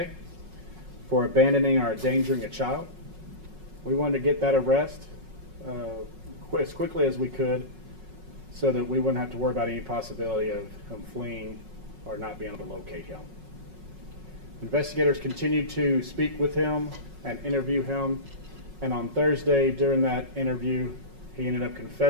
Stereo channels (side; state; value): left; late; 5.4 ms